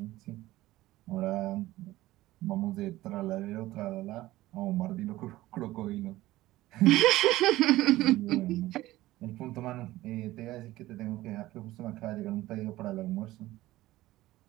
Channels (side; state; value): left; quieter; 16.8 dB